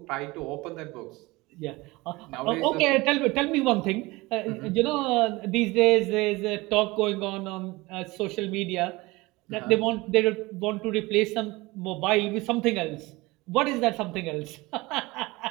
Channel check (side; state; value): left; quieter; 22.0 dB